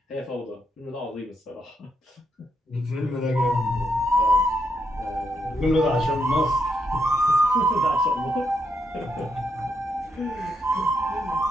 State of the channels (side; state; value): both; normal; correlation 0.79